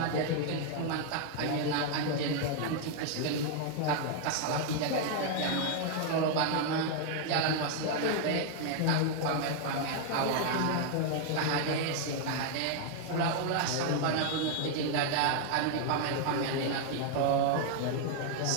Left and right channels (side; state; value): both; different; correlation 0.00